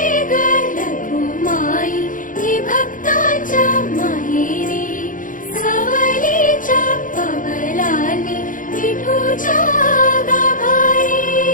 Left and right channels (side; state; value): right; late; 0.39 ms